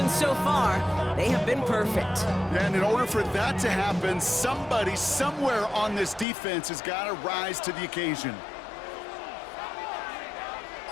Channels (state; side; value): drops out; right; at 6.2 s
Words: so far, they have been perfect. And in order for that to happen, somebody somewhere on this defense has got to rise to the occasion.